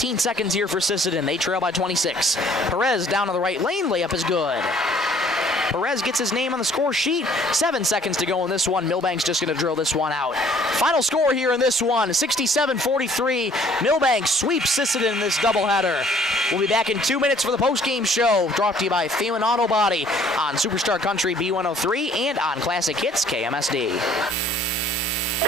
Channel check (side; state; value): both; normal; correlation 0.57